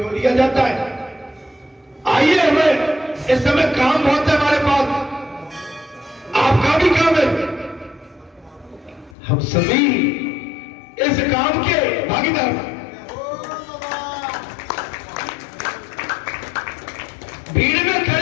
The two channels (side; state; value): right; drops out; at 9.2 s